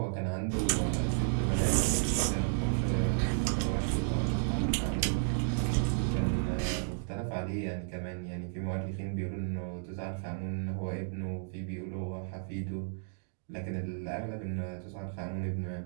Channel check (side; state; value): left; silent; digital silence